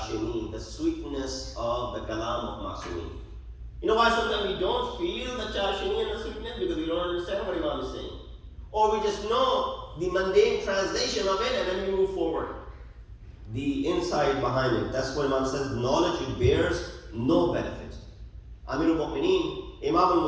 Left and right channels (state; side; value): identical; both; correlation 1.00